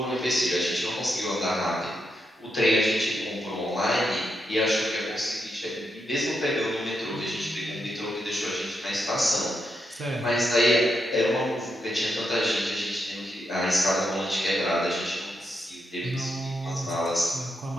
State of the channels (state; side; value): normal; both; correlation 0.83